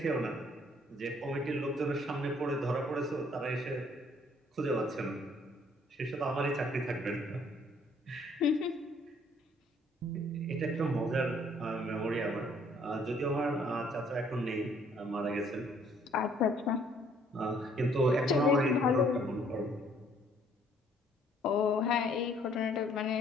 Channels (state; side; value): normal; both; correlation 0.62